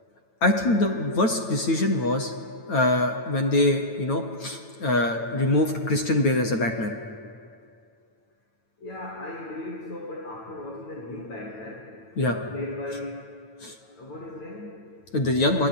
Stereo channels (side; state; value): right; late; 9.0 ms